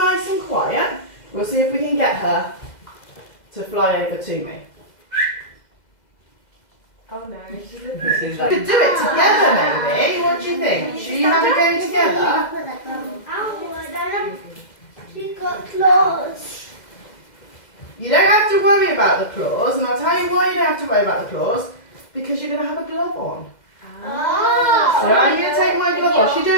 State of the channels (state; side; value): late; right; 2.0 ms